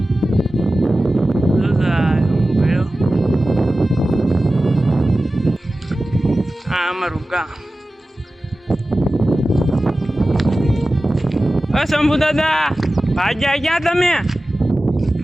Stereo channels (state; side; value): normal; both; correlation 0.95